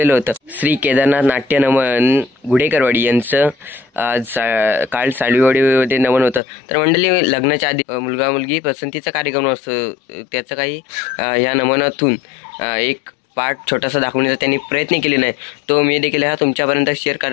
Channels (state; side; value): drops out; right; at 6.4 s